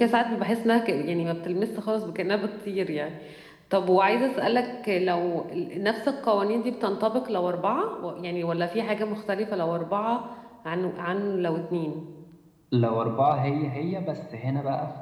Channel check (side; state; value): both; identical; correlation 1.00